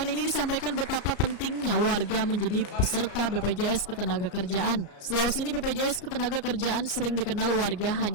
ini disampaikan betapa pentingnya warga menjadi peserta BPJS Ketenagakerjaan. Selawas ini BPJS Ketenagakerjaan sering dikenal warga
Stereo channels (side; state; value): right; late; 34 ms